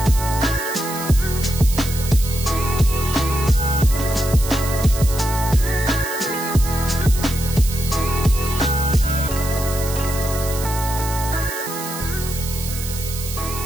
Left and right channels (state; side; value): noise; right; hiss, 9 dB below the sound